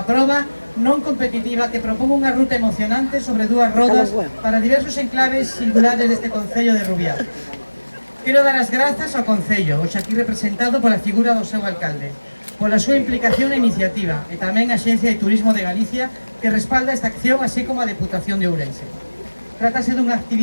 proba non competitiva que propón unha ruta emocionante sobre dúas rodas para diversos enclaves singulares deste Concello de Rubiá. Quero dar as grazas ao Concello, hoxe aquí representado pola figura do seu alcalde, pola súa implicación e iniciativa, e tamén a Axencia de Turismo de Galicia que respalda esta acción, así como a Deputación de Ourense. Trátase dunha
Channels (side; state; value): both; inverted; correlation -1.00